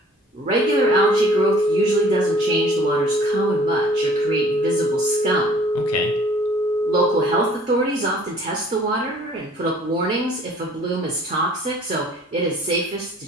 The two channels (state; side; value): normal; both; correlation 0.54